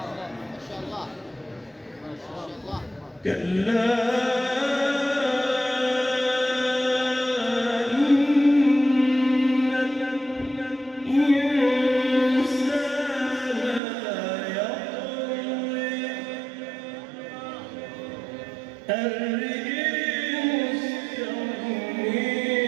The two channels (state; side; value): drops out; left; at 13.8 s